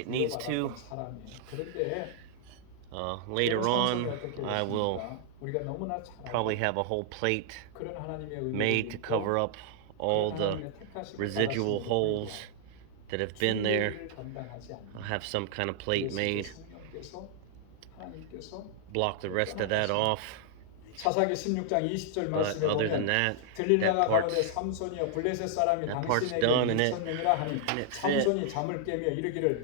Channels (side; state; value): both; different; correlation -0.01